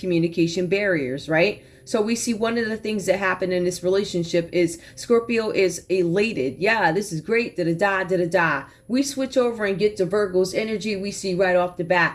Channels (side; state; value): both; identical; correlation 1.00